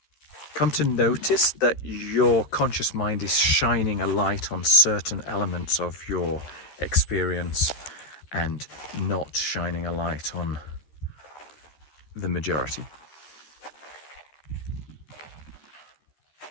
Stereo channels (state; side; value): late; right; 13 ms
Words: notice that your conscious mind is shining a light on certain elements of your experience and not shining a light on the majority.